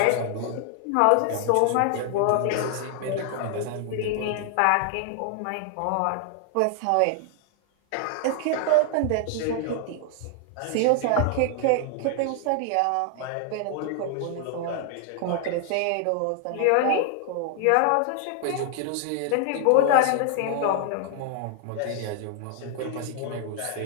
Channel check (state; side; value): different; both; correlation 0.00